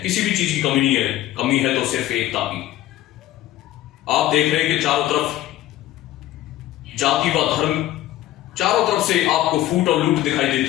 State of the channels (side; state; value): right; quieter; 14.6 dB